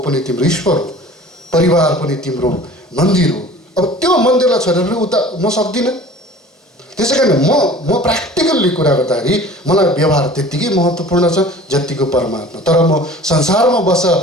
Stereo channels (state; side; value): normal; both; correlation 0.44